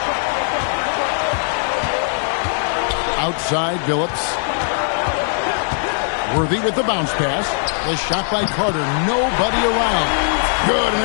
Outside, Billups. Worthy with the bounce pass. The shot by Carter. Nobody around. Good,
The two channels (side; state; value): right; silent; digital silence